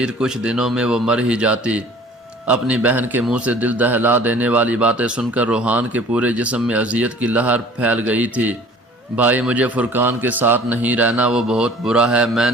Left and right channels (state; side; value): normal; both; correlation 0.49